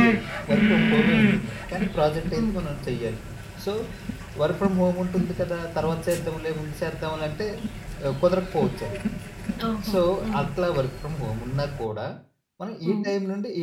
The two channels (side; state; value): both; identical; correlation 1.00